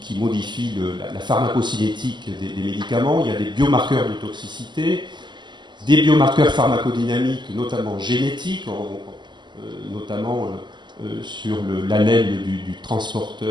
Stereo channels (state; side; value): late; left; 0.22 ms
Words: modifient la pharmacocinétique des médicaments. Il y a des biomarqueurs de toxicité, des biomarqueurs pharmacodynamiques, notamment génétiques, notamment sur l'allèle du